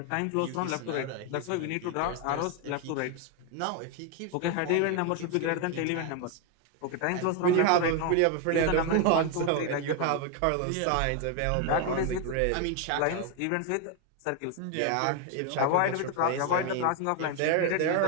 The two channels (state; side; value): different; both; correlation 0.01